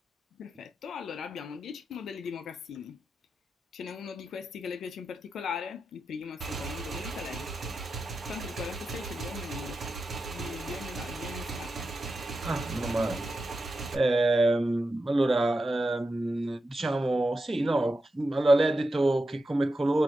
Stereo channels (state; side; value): normal; both; correlation 0.90